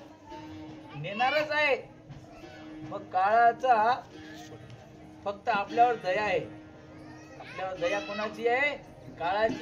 नेणारच आहे. मग काळाचा फक्त आपल्यावर दया आहे. आपल्यावर दया कोणाची आहे?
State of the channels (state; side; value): identical; both; correlation 1.00